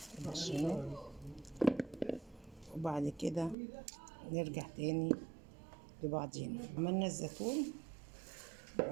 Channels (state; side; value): drops out; left; at 3.6 s